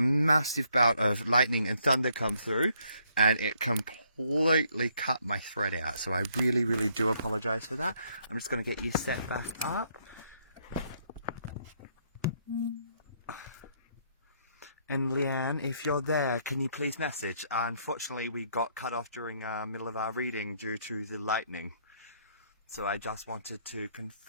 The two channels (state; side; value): inverted; both; correlation -0.70